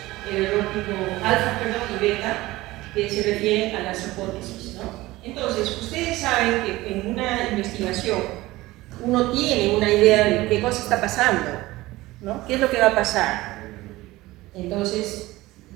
el error tipo alfa, y beta, que se refieren a las hipótesis, ¿no? Entonces, ustedes saben que en una investigación uno tiene una idea de qué cosa está pasando, ¿no? ¿Qué es lo que va a pasar? Entonces,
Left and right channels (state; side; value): quieter; left; 18.6 dB